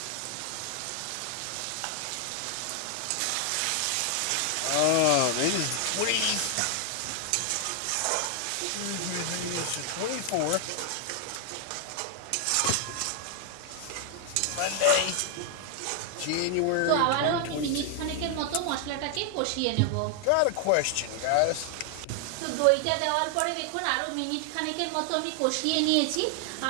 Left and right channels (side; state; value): both; different; correlation 0.00